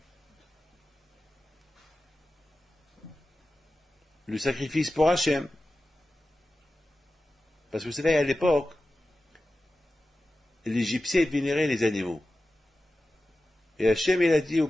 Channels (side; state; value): both; normal; correlation 0.94